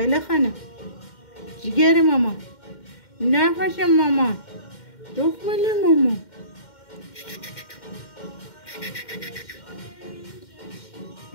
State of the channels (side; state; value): right; late; 2.1 ms